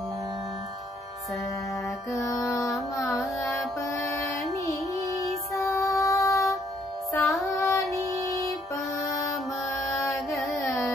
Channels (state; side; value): normal; both; correlation 0.67